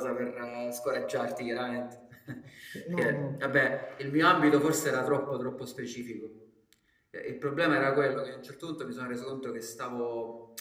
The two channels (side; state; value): both; identical; correlation 1.00